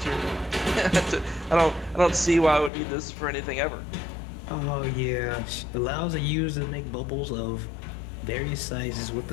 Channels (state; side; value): drops out; right; at 2.7 s